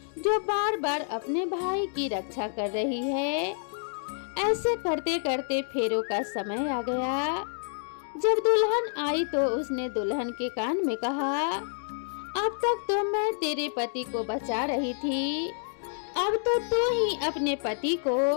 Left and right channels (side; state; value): right; silent; digital silence